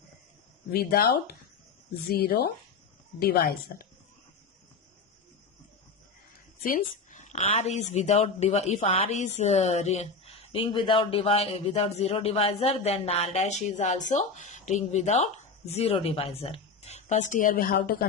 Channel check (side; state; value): right; quieter; 4.5 dB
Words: without zero divisor. Since R is without if R is ring without zero divisor, then R dash is also ring without zero divisor. First here we have to